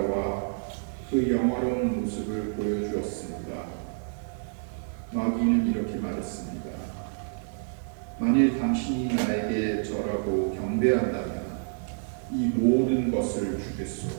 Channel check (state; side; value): silent; left; 56 dB below the other